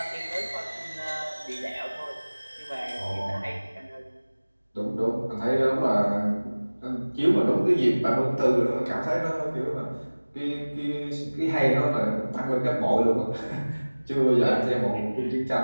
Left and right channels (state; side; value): inverted; both; correlation -1.00